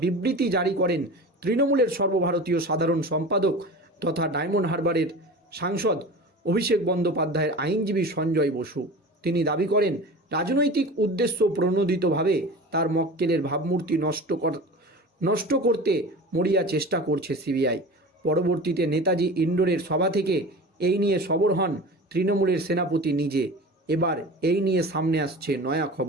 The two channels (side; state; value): both; normal; correlation 0.35